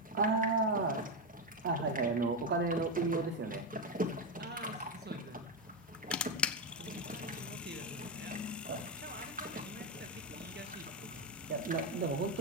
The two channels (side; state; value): both; normal; correlation 0.08